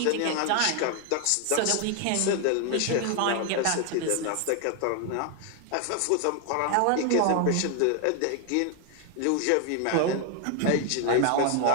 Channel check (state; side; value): different; both; correlation 0.00